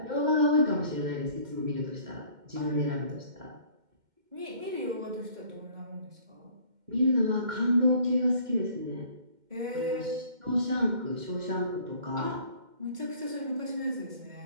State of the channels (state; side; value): late; left; 2.1 ms